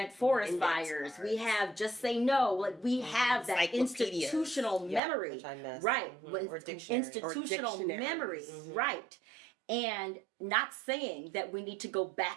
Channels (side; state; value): left; drops out; at 5.0 s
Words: forest fires. We have Just Say No. Like we have that institutional memory, right? Institutional memory, right? And not saying that we need to go